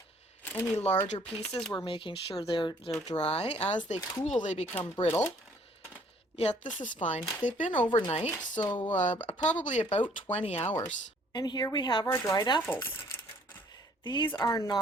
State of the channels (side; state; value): both; normal; correlation 0.60